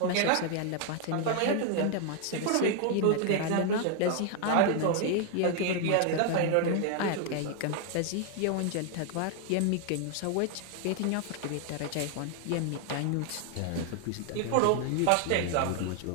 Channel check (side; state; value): both; different; correlation 0.00